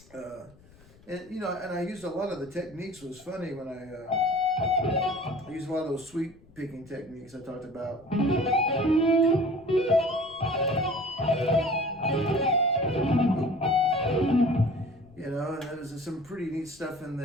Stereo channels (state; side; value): noise; left; rumble, 26 dB below the sound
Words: And I used a lot of the techniques. It was funny when I used a lot of those sweep picking techniques I talked about. And there's some pretty neat stuff in